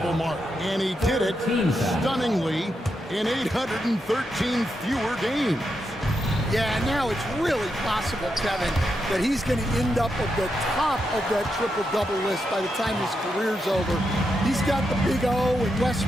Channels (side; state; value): both; normal; correlation 0.84